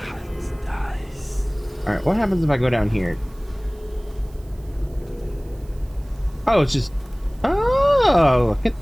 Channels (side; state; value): right; noise; hiss, 29 dB below the sound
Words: All right, what happens if I go down here? Oh, it's just. Oh, look